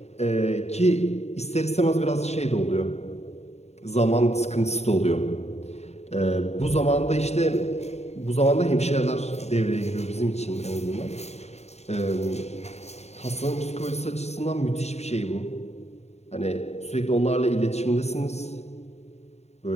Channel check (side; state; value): right; late; 0.32 ms